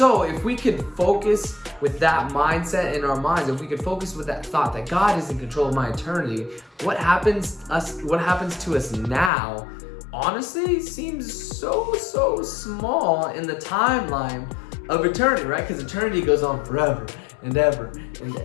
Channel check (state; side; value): drops out; right; at 9.3 s